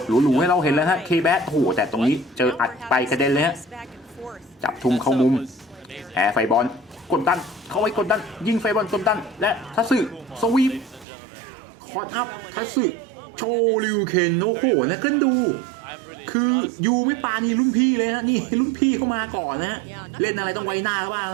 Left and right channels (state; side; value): drops out; left; at 11.1 s